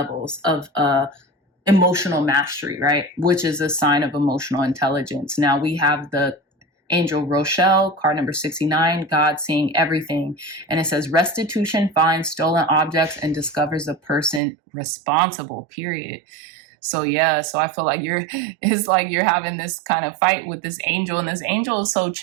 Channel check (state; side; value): drops out; left; at 14.4 s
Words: of emotional mastery, right? Which is a sign of emotional intelligence. Now we have the Angel Rochelle, card number 69, God seeing everything. And it says restitution finds stolen objects and discovers the person responsible, period. So yeah, so I feel like it's like you're having this kind of fight with this angel, and this angel is so